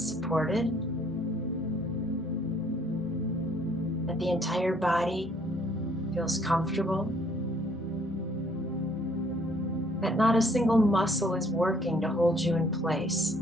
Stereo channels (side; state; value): both; normal; correlation 0.63